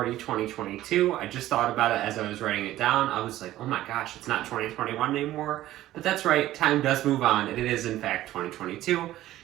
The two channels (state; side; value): quieter; left; 14.6 dB